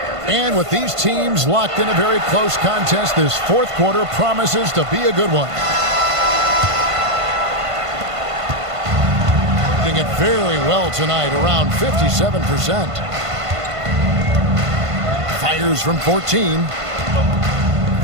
And with these teams locked in a very close contest, this fourth quarter promises to be a good one. Doing it very well tonight, around 57%. Fires from 14.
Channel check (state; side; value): late; left; 1.5 ms